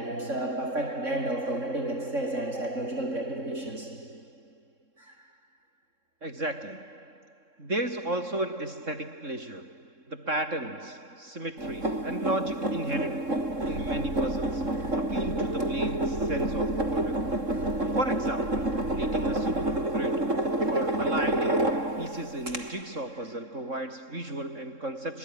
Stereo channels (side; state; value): left; late; 3.7 ms